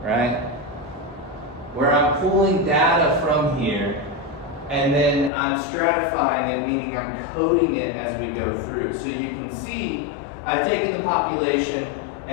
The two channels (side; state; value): right; drops out; at 5.3 s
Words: right? Where I'm pulling data from here, and then I'm stratifying it, meaning I'm coding it as we go through. So you can see I've taken the population